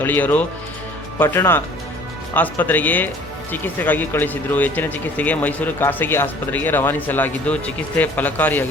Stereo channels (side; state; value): both; normal; correlation 0.50